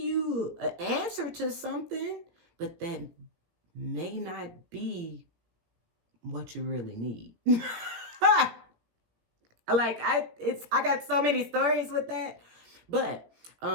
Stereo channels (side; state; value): left; late; 18 ms